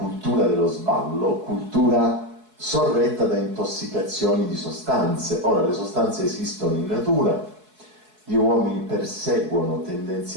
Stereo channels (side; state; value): left; late; 4.7 ms